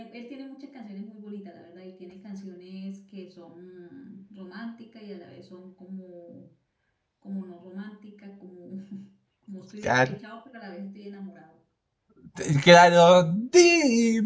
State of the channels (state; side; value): identical; both; correlation 1.00